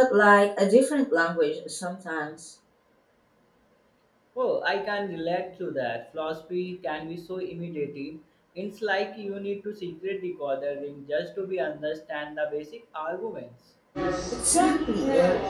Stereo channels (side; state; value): both; identical; correlation 1.00